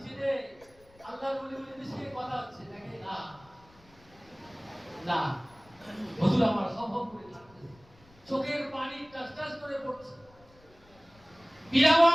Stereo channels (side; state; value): left; noise; rumble, 27 dB below the sound